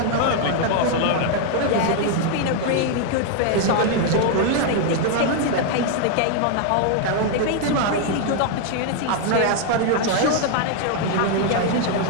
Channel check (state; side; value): different; both; correlation 0.00